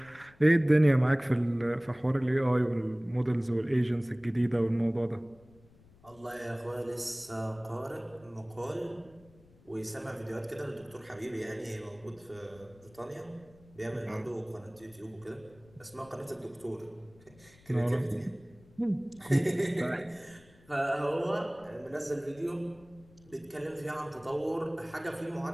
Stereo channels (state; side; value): noise; left; rumble, 26 dB below the sound